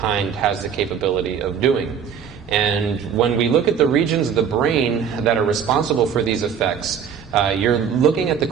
has the capability of doing. And when we look at the regions of the brain that are responsible for these effects, you're looking at the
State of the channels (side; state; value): left; quieter; 7.5 dB